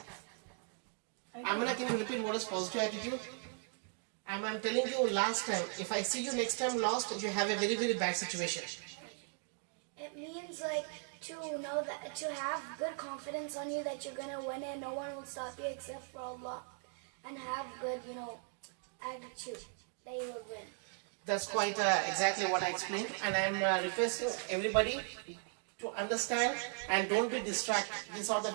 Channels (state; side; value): silent; left; 52 dB below the other